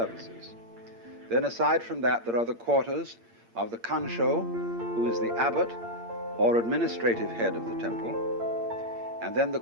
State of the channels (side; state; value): left; late; 8.7 ms